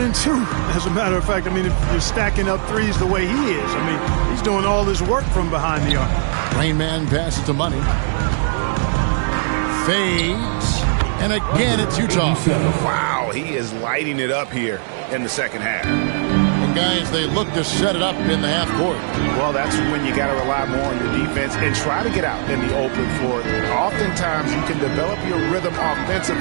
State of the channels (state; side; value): silent; left; 66 dB below the other